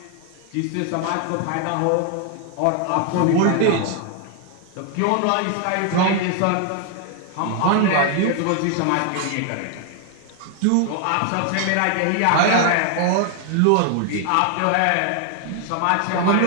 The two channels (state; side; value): different; both; correlation 0.00